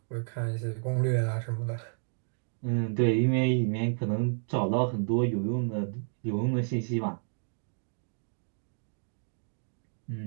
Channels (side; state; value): left; silent; digital silence